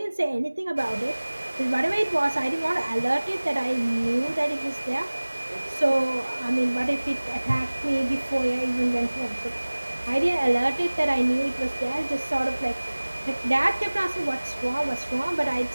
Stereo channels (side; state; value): both; inverted; correlation -1.00